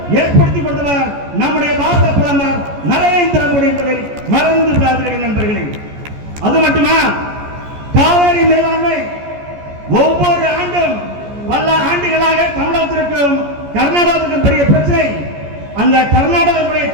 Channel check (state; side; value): late; left; 14 ms